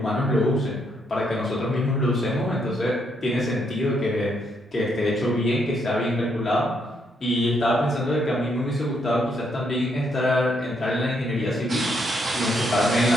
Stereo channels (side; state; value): both; normal; correlation 0.75